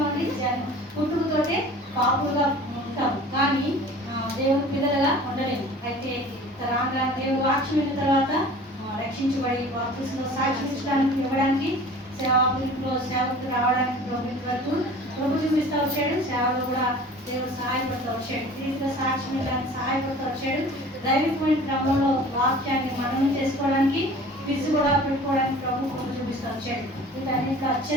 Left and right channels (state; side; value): normal; both; correlation 0.44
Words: పుట్టుకతోటే పాపులుగా ఉంటాం, కానీ దేవుని పిల్లలుగా ఉండలేము. అయితే రాగా దేవుడు వాక్యం విన్న తర్వాత రక్షించబడి బాప్తిస్మలో సాక్ష్యం ఇవ్వడానికి సేవకు రావడానికి ప్రభుత్వ వరకు ప్రభు చూపిస్తూ వచ్చాడు. సేవలో కూడా దేవుడు సహాయపడుతూ వచ్చాడు, దీంట్లో సాక్ష్యం ఇవ్వడానికి సహాయపడుతూ వచ్చాడు. దైవికమైన క్రమంలో వాక్యాన్ని మననం చేసుకోవడానికి ఫిజ్ కూడా పెట్టుకోవడానికి ప్రభు కృప చూపిస్తూ వచ్చాడు. వీటన్నిటిలో